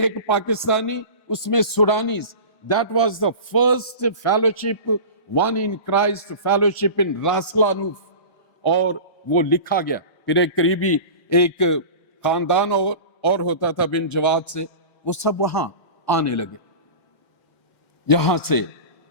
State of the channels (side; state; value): right; late; 1.6 ms